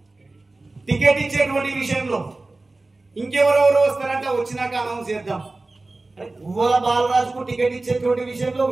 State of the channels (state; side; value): quieter; left; 3.2 dB